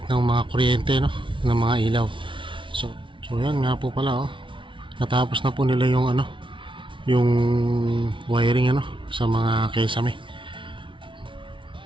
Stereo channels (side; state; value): left; late; 0.24 ms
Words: ng mga kuryente, no? Ng mga ilaw. So yan nga po pala, oh. Natapos na po nila yung yung wiring sa mga kesame.